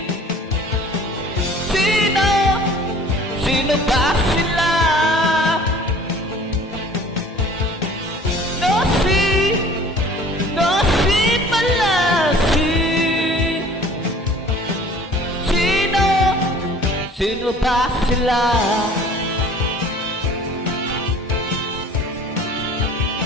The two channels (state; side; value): normal; both; correlation 0.48